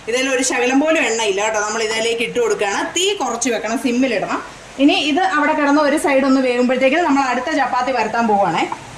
ഇതിൽ ഒരു ശകലം പോലും എണ്ണയില്ല കേട്ടോ. നമ്മൾ ഇതിലേക്ക് ഇട്ട് കൊടുക്കുകയാണ്. തീ കുറച്ച് വെക്കണം, സിമ്മിലിടണം. ഇനി ഇത് അവിടെ കിടന്ന് ഒരു സൈഡ് ഒന്ന് വേകുമ്പോഴത്തേക്കും നമ്മൾ അടുത്ത ചപ്പാത്തി പരത്താൻ പോവുകയാണേ.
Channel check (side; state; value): both; identical; correlation 1.00